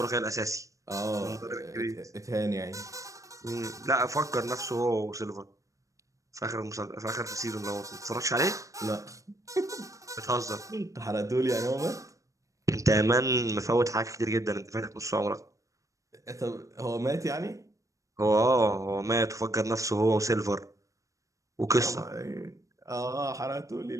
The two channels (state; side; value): late; left; 0.16 ms